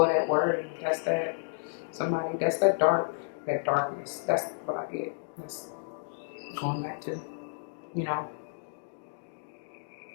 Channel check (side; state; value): right; silent; digital silence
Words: of that worry. That's that somebody. That's that darkness. That's what I get. That's going back to, you know.